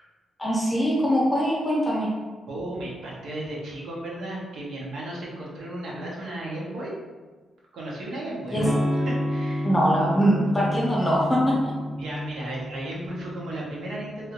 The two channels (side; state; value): both; normal; correlation 0.86